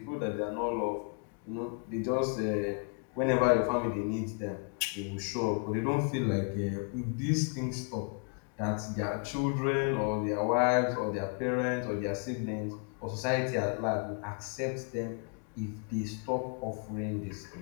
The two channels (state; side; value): quieter; right; 37.0 dB